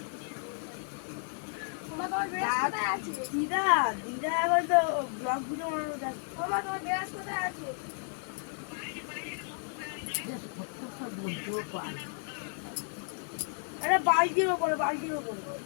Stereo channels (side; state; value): right; silent; 56 dB below the other